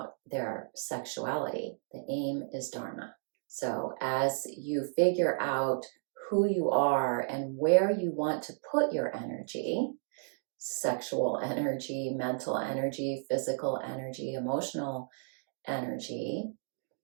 their sexuality. The aim is Dharma. So as you figure out who you are and where you want to put your energy, sexual energy, mental energy, physical energy, emotional energy,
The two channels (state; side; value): silent; left; digital silence